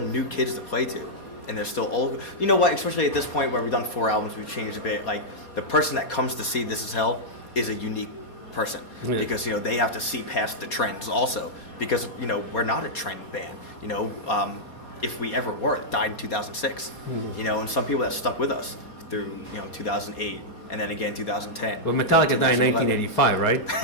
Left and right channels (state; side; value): late; right; 4.2 ms